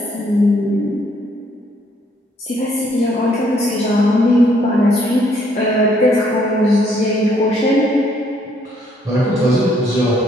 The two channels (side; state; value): both; normal; correlation 0.67